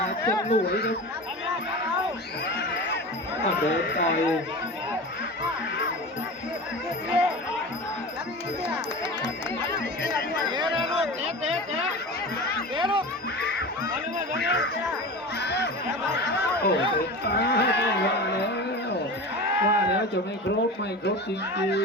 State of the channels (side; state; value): both; normal; correlation 0.30